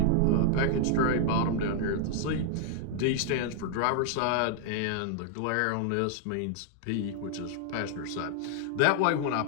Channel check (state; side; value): different; both; correlation -0.01